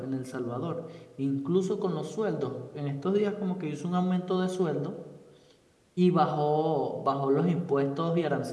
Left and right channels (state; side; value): identical; both; correlation 1.00